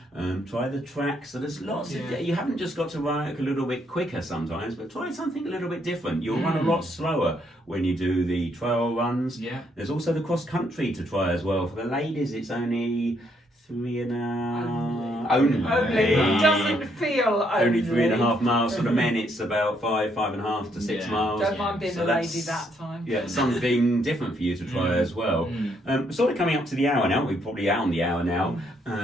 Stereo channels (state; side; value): normal; both; correlation 0.72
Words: try the track. So there's lots of, you haven't just got to run a little bit quicker sometimes, but try something a little bit different. You'll run a lot slower when you do the trail runs. There's also the cross country to try as well. For the ladies, it's only 3.5. Only. It doesn't feel only 3.5 miles. For the men, it's about 5.5 to 6 miles. Don't mind being a lady that time. Yeah, something different for you to try as well. Sort of coming up to the hour now. We're probably out on the hour now.